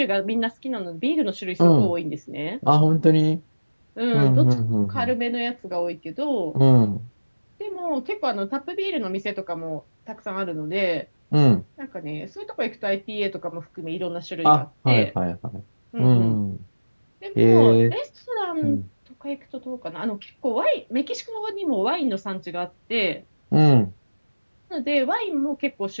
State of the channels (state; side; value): inverted; both; correlation -1.00